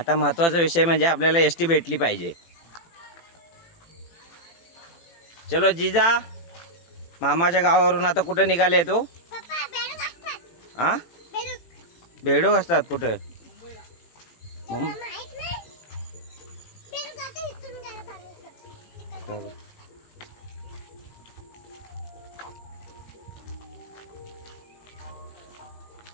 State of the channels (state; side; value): late; right; 18 ms